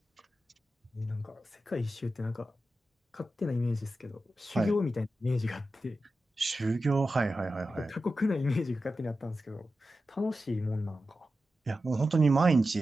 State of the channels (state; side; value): normal; both; correlation 0.92